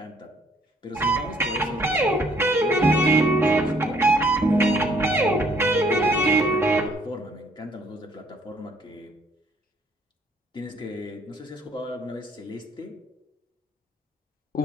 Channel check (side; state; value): both; normal; correlation 0.64